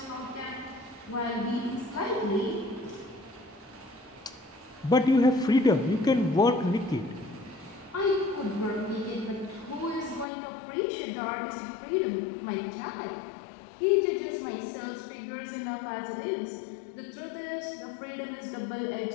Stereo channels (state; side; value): drops out; right; at 10.2 s